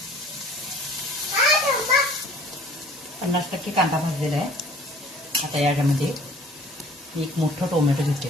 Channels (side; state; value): both; normal; correlation 0.50